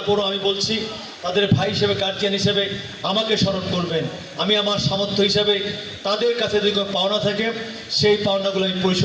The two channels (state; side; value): identical; both; correlation 1.00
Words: আমি বলছি তাদের ভাই হিসেবে গার্জিয়ান হিসেবে আমাকে স্মরণ করবেন। আমি আমার সামর্থ্য হিসাবে তাদের কাছে যদি কোনো পাওনা থাকে সেই পাওনাগুলো আমি